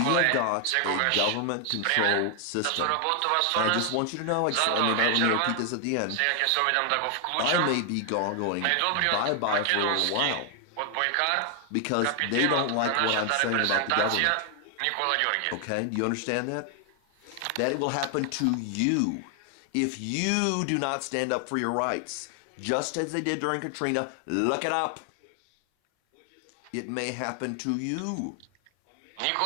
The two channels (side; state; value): both; different; correlation 0.00